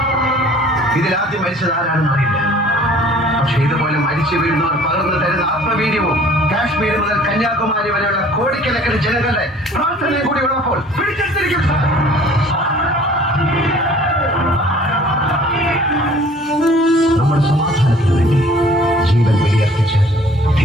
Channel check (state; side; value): normal; both; correlation 0.52